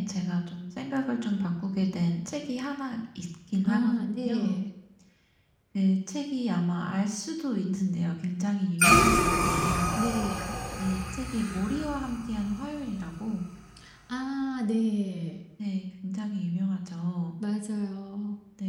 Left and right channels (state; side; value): identical; both; correlation 1.00